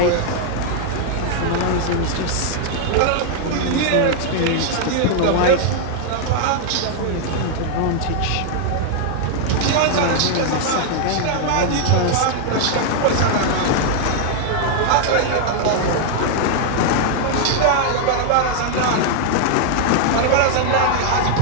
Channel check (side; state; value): both; different; correlation 0.00